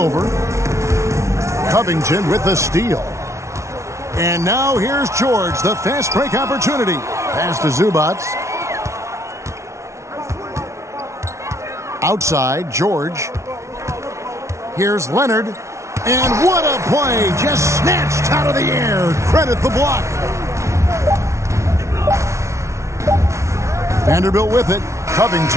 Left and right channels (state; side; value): late; left; 0.14 ms